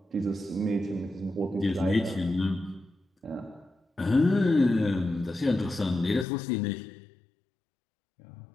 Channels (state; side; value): drops out; right; at 6.2 s